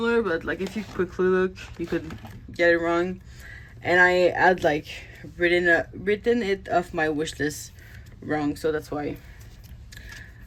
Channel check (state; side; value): identical; both; correlation 1.00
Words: but like if you quickly look, you could get it wrong. And I had like written it off my wish list wrong, so that's why